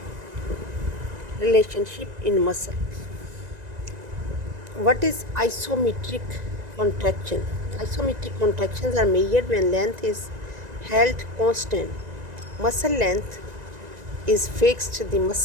relationship in muscle. What is isometric contraction? Isometric contractions are measured when length is held constant. Muscle length is fixed, the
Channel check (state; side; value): late; left; 1.9 ms